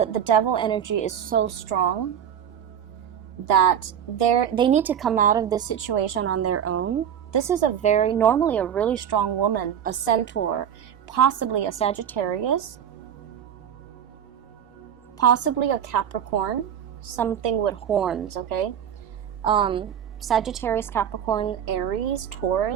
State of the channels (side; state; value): left; quieter; 8.9 dB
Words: devil energy is so strong that they need to come out of this situation on their own. This is normally a really strong woman, a centaur, possibly a Sagittarius, possibly a Capricorn, something with horns, okay? Sagittarius, Capricorn, Aries,